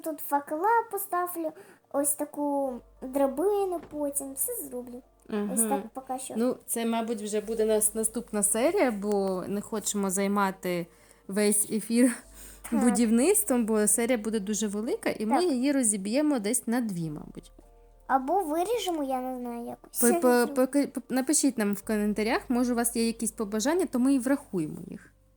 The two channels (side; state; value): both; identical; correlation 1.00